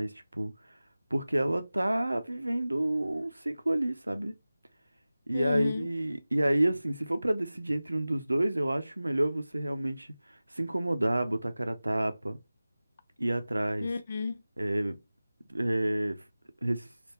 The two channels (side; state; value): both; inverted; correlation -0.97